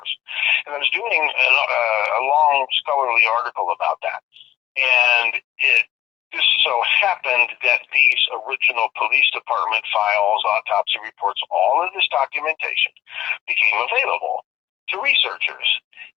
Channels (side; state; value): right; quieter; 12.7 dB